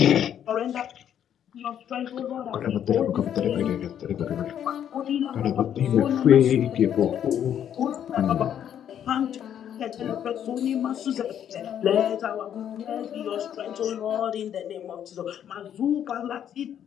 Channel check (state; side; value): quieter; right; 9.7 dB